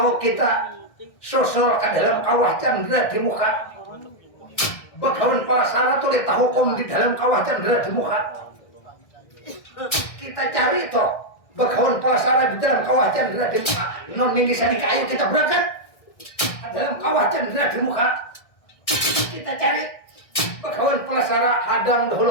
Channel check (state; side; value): late; right; 1.6 ms